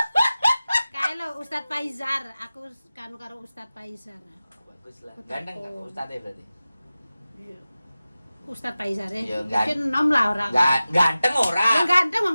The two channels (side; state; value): both; inverted; correlation -0.96